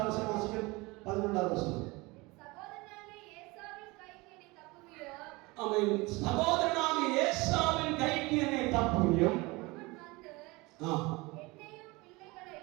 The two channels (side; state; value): left; quieter; 23.7 dB